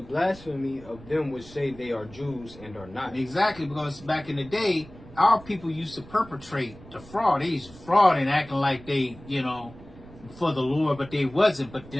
of them which say they are Jews and are not. Exactly, because back in the day, our people used to perpetrate the fraud. They used to fraud and acting like they, you know, for the Lord, but they wasn't. But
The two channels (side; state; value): right; noise; rumble, 19 dB below the sound